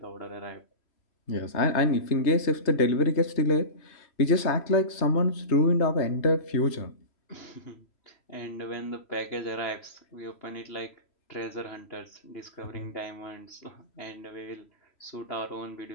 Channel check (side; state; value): right; late; 3.0 ms